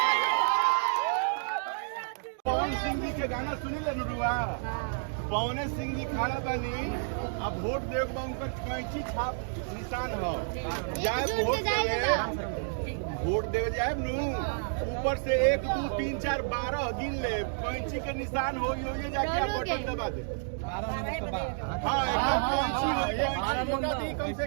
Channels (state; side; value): silent; left; digital silence